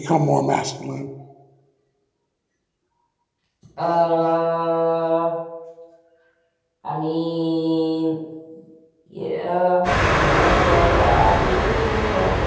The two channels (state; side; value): identical; both; correlation 1.00